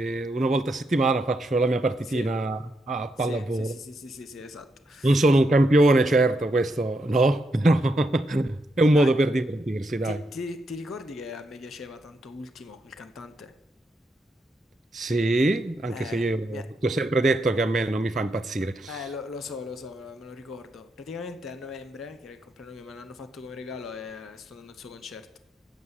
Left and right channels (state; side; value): normal; both; correlation 0.81